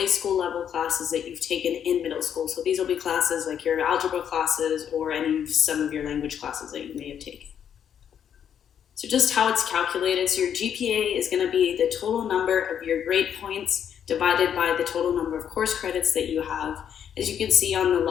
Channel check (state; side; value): quieter; right; 8.8 dB